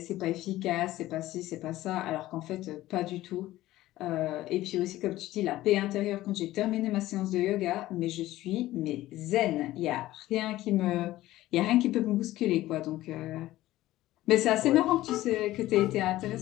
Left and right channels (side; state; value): right; quieter; 15.9 dB